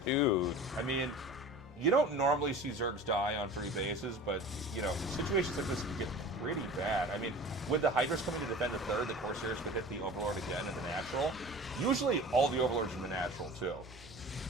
Dude. I mean, you don't normally see Zergs die on 3 bases, but, you know, situations like this can get pretty bad. I mean, with the Hydras coming to defend the 3rd, the Corsairs could hit the Overlord again in the natural. Usually, all the Overlords in the natural, too.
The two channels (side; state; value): both; normal; correlation 0.39